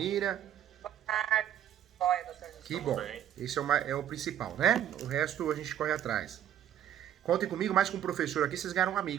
Boa tarde. Olha, doutor Que Gustavo. bom. bem. Esse é o principal, né? O resto a gente corre atrás. Contem comigo, mais com o professor aqui, vocês ganharam um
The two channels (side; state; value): left; quieter; 10.6 dB